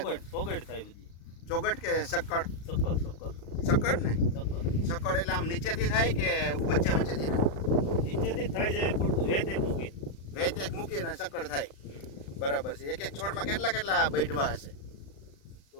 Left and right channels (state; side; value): late; right; 35 ms